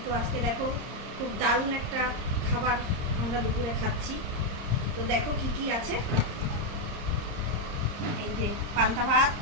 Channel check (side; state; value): left; late; 30 ms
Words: তো আজকে দেখো খুব দারুণ একটা খাবার আমরা দুপুরে খাচ্ছি। তো দেখো কি কি আছে। এই যে পান্তা ভাত,